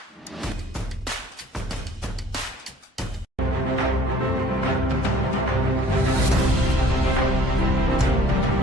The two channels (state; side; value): normal; both; correlation 0.52